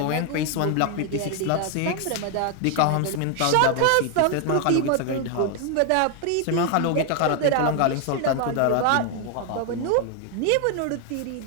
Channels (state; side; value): different; both; correlation 0.01